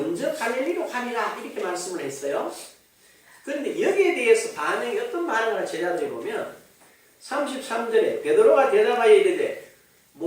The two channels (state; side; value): identical; both; correlation 1.00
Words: 갈릴리로 가리라 이렇게 말씀을 했어요. 그런데 여기에 대해서 반응이 어떤 반응을 제자들이 보면 33절에 베드로가 대답하여 이르되